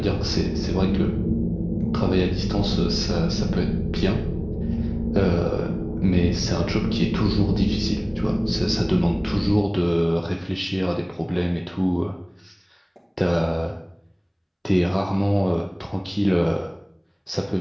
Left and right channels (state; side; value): identical; both; correlation 1.00